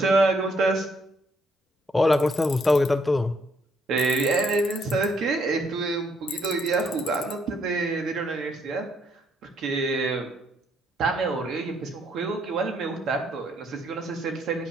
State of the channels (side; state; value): both; normal; correlation 0.71